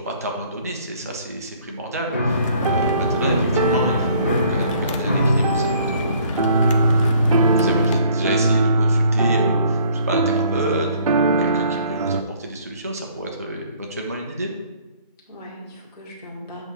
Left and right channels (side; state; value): both; inverted; correlation -0.59